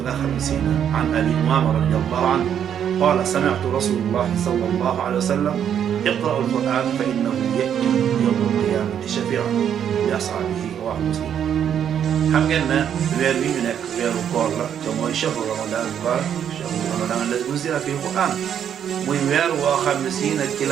nga xam ne si an Abi Umaama radiyallahu anhu قال سمعت رسول الله صلى الله عليه وسلم اقرأوا القرآن فإنه يأتي يوم القيامة شفيعا لأصحابه رواه مسلم. xam ngeen ne weer wi ñu nekk weeru koor la te mooy shahru ramadan mubarak shahru ramadan alladi unzila fihi alquran muy weer woo xam ne si nag ci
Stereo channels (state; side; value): quieter; left; 9.0 dB